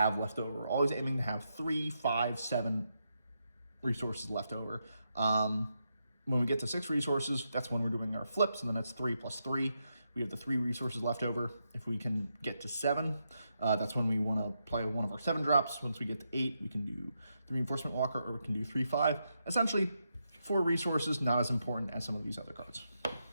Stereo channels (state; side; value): inverted; both; correlation -0.83